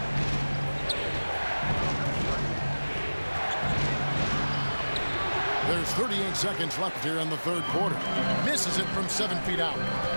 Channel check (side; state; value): both; inverted; correlation -1.00